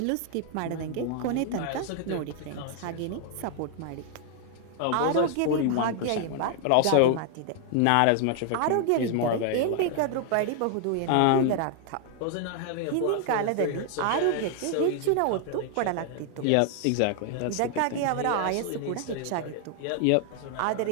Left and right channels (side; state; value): both; different; correlation 0.00